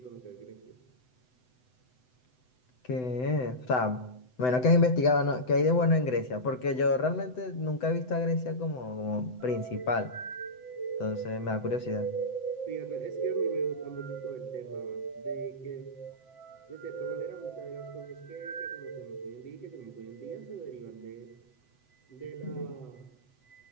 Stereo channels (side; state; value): right; late; 7.9 ms